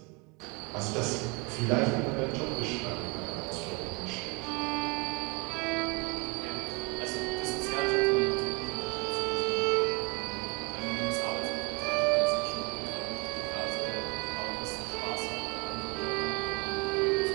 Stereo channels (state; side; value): quieter; left; 29.1 dB